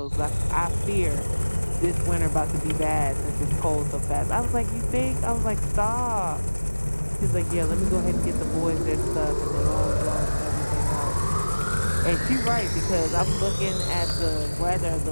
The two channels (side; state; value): both; inverted; correlation -1.00